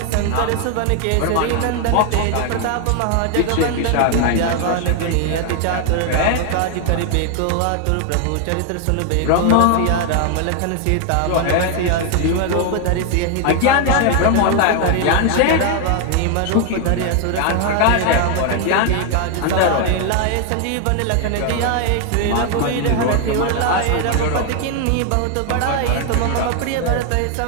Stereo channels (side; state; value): both; different; correlation 0.00